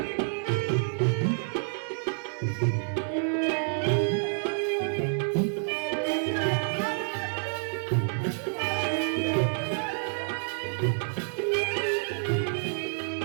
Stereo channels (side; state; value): left; silent; 59 dB below the other